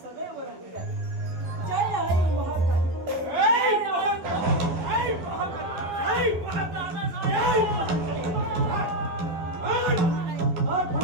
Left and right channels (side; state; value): left; late; 11 ms